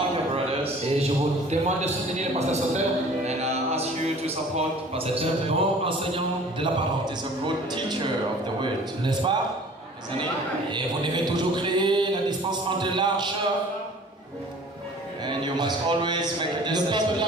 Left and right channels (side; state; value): both; normal; correlation 0.48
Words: the brothers. Et je vous demande de soutenir le pasteur Sauter. And I ask you to support Pastor C'est un Soter. bon enseignant de la parole. He's a good teacher of the word, N'est-ce pas? isn't he? Et vous devez toujours créer la distance entre l'arche. And you must always make a Le distance peuple